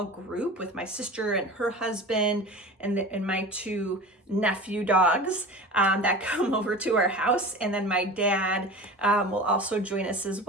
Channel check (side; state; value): both; normal; correlation 0.35